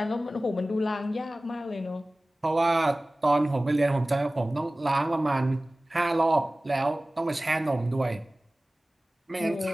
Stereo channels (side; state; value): both; normal; correlation 0.98